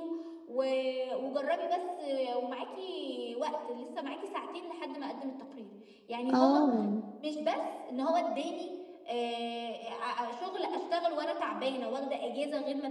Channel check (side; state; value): both; identical; correlation 1.00